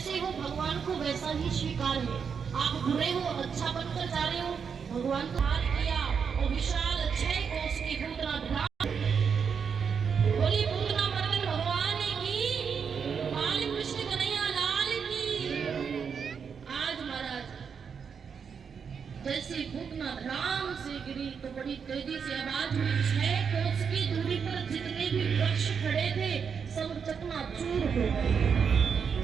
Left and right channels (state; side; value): quieter; left; 6.5 dB